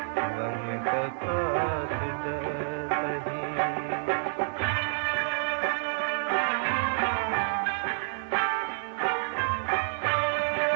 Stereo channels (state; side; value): silent; left; digital silence